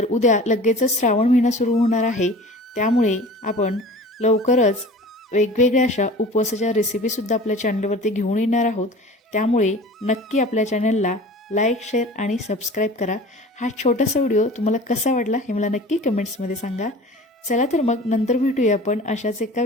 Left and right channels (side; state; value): both; normal; correlation 0.41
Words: उद्या लगेचच श्रावण महिना सुरू होणार आहे, त्यामुळे आपण लवकरच वेगवेगळ्या अशा उपवासाच्या रेसिपीसुद्धा आपल्या चॅनलवरती घेऊन येणार आहोत। त्यामुळे नक्की आपल्या चॅनलला लाईक शेअर आणि सबस्क्राईब करा। हा छोटासा व्हिडिओ तुम्हाला कसा वाटला हे मला नक्की कमेंट्समध्ये सांगा। चला तर मग नंतर भेटूया आपण अशाच एका